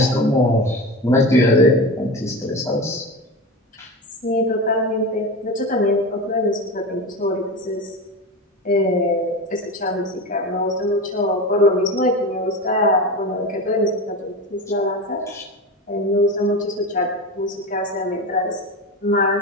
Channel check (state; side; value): normal; both; correlation 0.25